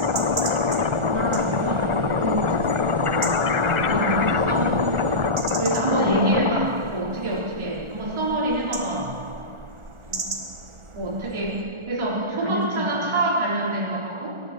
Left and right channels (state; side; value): late; left; 1.4 ms